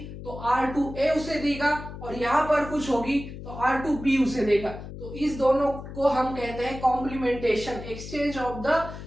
तो R2A उसे देगा और यहाँ पर कुछ होगी तो R2B उसे देगा। तो इस दोनों को हम कहते हैं complementation, exchange of the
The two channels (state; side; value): noise; left; hum, 11 dB below the sound